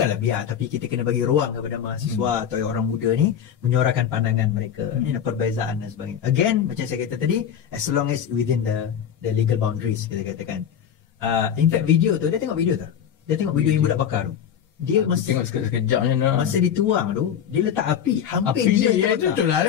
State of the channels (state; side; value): quieter; right; 8.8 dB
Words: biar, tapi kita kena bagi ruang kepada mahasiswa atau orang muda ni menyuarakan pandangan mereka, perbezaan dan sebagainya. Again, macam saya kata tadi, as long as within the legal boundaries, kita katakan. In fact, video tu, dia tengok video tu. Dia tengok video yang budak bakar tu. Dia tengok sekejap je nak. Masa dituang tu, dia letak api hampir dia ya, itu lah.